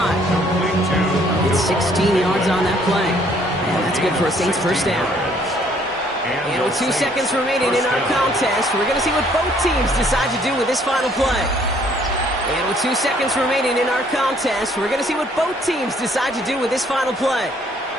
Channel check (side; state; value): both; normal; correlation 0.63